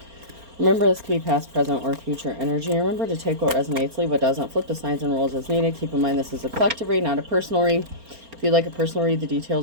Remember, this could be past, present, or future energy. Remember to take what resonates, leave what doesn't, flip the signs and rules as needed. Keep in mind this is a collective read, not a personal read. If you'd like a personal read, the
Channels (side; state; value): left; late; 4.3 ms